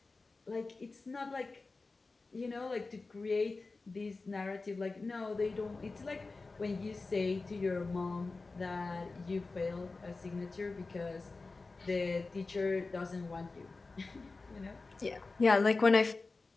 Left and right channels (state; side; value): quieter; right; 3.7 dB